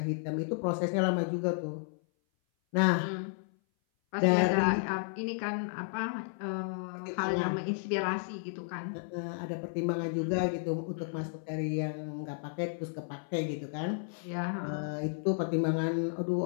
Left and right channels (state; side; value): silent; right; 56 dB below the other